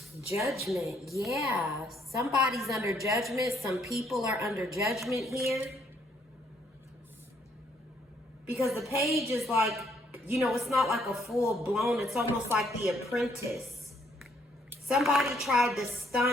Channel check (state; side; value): normal; both; correlation 0.69